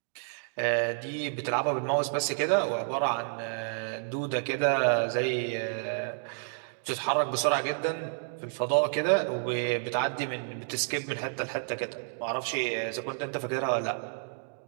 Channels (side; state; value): left; silent; digital silence